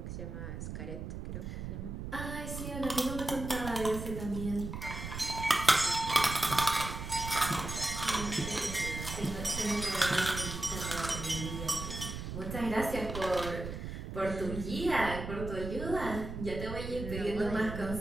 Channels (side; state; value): right; noise; rumble, 7 dB below the sound